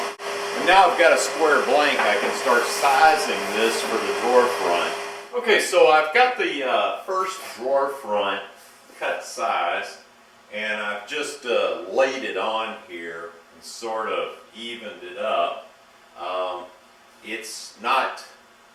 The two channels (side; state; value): both; identical; correlation 1.00